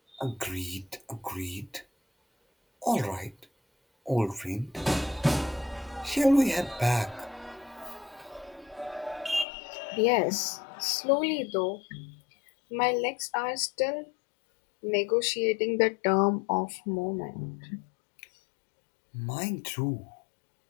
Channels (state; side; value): drops out; right; at 9.5 s